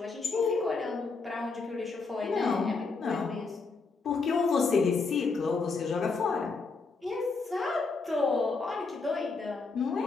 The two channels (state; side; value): quieter; right; 4.3 dB